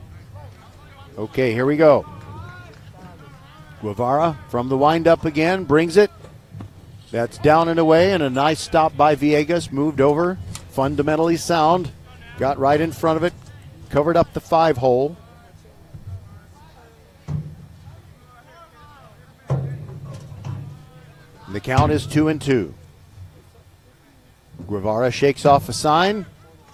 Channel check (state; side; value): identical; both; correlation 1.00